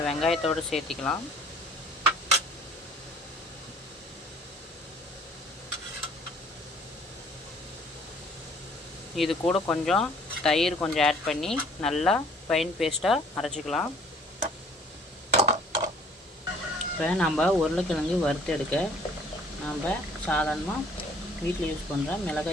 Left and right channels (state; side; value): normal; both; correlation 0.56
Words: வெங்காயத்தோடு சேர்த்திக்கலாம். இது கூட கொஞ்சம் தயிர் கொஞ்சம் ஆட் பண்ணி நல்லா ஃபைன் பேஸ்ட்டாக அரைச்சிக்கலாம். இப்போ நம்ம உருளைக்கிழங்கு வறுத்து எடுக்க நம்ம சாதாரணமாக வீட்டில் யூஸ் பண்ணுற